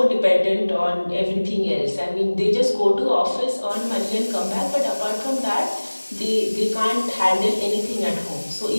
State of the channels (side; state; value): both; inverted; correlation -1.00